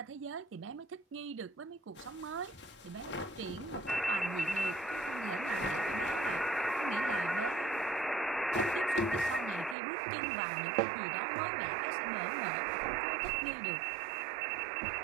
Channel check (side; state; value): left; drops out; at 9.8 s